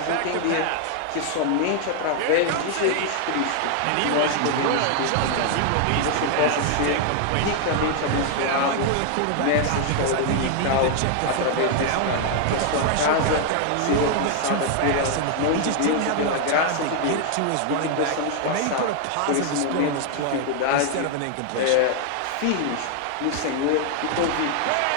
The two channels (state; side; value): different; both; correlation 0.00